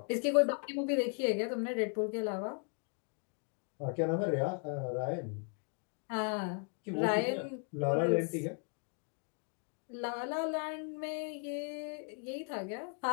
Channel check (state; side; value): quieter; right; 39.5 dB